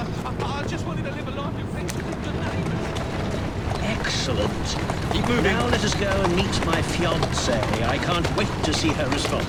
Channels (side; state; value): both; identical; correlation 1.00